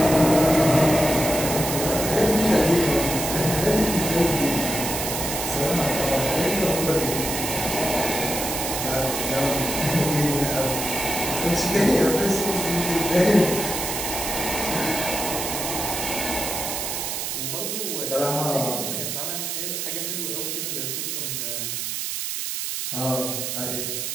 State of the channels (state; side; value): noise; right; hiss, 3 dB below the sound